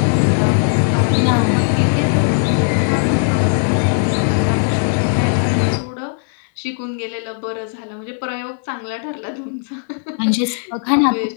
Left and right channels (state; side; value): silent; right; 61 dB below the other